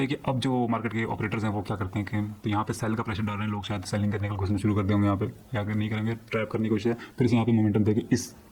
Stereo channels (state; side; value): identical; both; correlation 1.00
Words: कि अब जो मार्केट के ऑपरेटर्स हैं वो क्या करते हैं कि तो यहाँ पे सेल का प्रेशर डाल रहे हैं लोग, शायद सेलिंग करने का कोशिश शुरू कर देंगे यहाँ पे, या अगर नहीं करेंगे ट्रैप करने की कोशिश है, फिर से यहाँ पे मोमेंटम देके